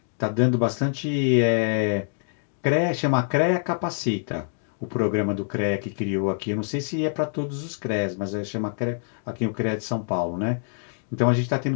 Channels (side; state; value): right; silent; digital silence